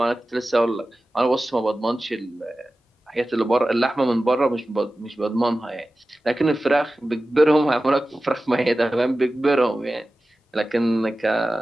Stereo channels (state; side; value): normal; both; correlation 0.95